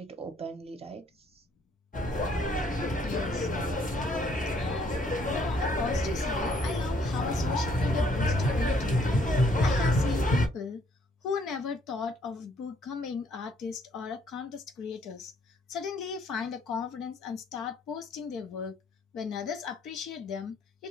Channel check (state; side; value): normal; both; correlation 0.66